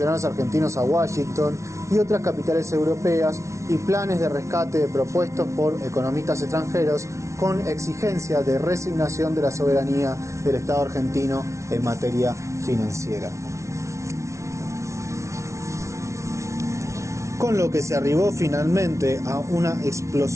argentinos a Washington y otras capitales europeas y planes de rescate propuestos por economistas extranjeros con exigencia de resignación de la soberanía del Estado argentino en materia financiera. Con lo que se arribó finalmente a una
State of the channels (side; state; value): left; late; 0.14 ms